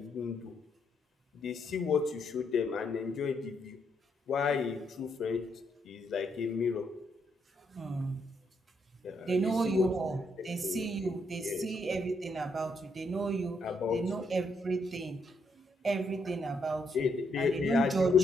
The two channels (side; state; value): both; normal; correlation 0.76